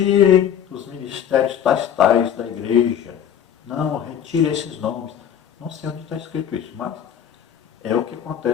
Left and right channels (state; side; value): quieter; right; 9.2 dB